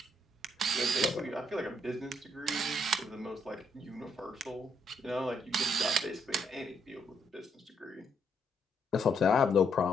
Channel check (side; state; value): both; normal; correlation 0.74